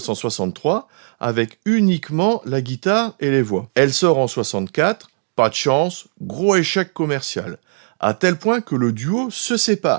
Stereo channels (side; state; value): left; silent; 58 dB below the other